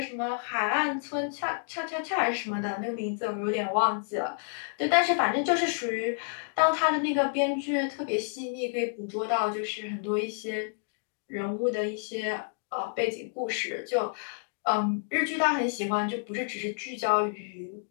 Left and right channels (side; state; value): right; silent; digital silence